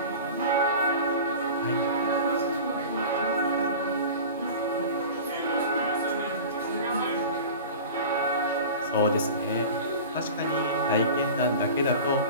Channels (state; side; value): inverted; both; correlation -0.35